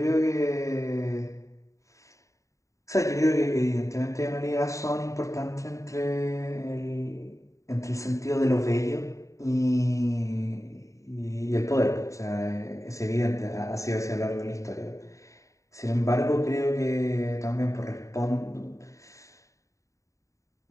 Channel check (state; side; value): late; right; 0.15 ms